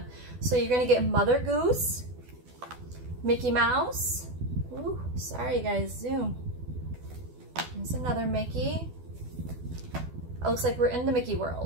So you're going to get Mother Goose, Mickey Mouse. Ooh, sorry guys, zoom. There's another Mickey. It looks like we're in the Mickey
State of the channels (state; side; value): late; left; 12 ms